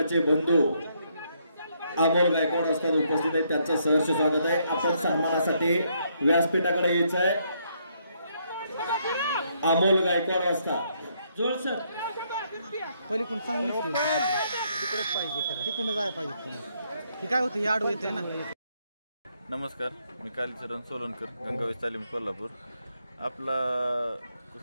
बंधू अमोल गायकवाड असतात उपस्थित आहेत. त्यांचं सहर्ष स्वागत आहे. आपण सन्मानासाठी व्यासपीठाकडे यायचं आहे. अमोल गायकवाड असतात जोड सर पलीकडून चांगली तिकडे पाहिजे. तिकडून जायला पाहिजे. ही काय होतं, आडू येते ना. नमस्कार, मी कालीचरण सोलनकर, गंगावेश तालीम कोल्हापूर. आपला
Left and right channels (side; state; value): both; inverted; correlation -0.73